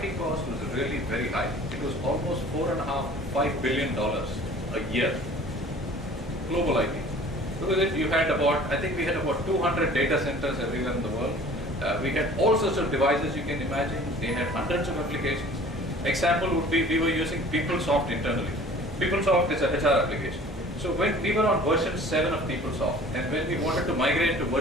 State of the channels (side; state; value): both; normal; correlation 0.47